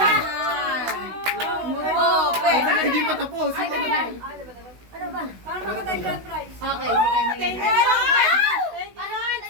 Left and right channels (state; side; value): late; left; 16 ms